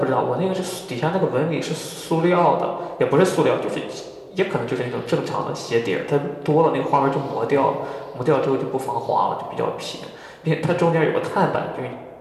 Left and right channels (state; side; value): identical; both; correlation 1.00